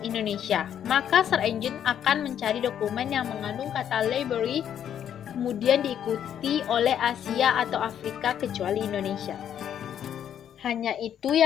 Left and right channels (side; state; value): right; quieter; 9.5 dB